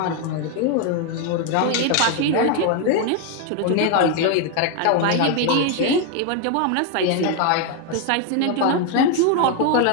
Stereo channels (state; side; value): different; both; correlation 0.01